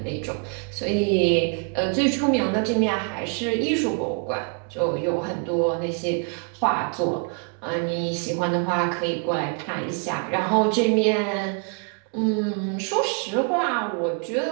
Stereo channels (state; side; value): quieter; left; 37.7 dB